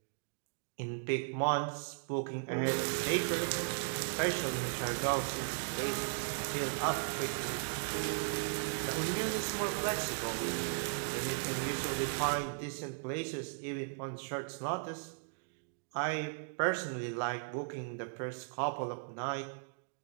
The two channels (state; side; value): silent; left; digital silence